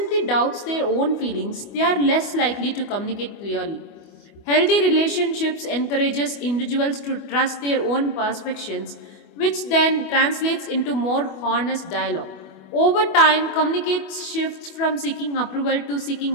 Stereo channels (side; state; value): right; late; 25 ms